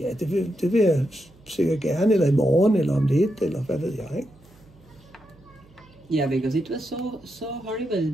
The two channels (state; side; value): noise; right; hum, 28 dB below the sound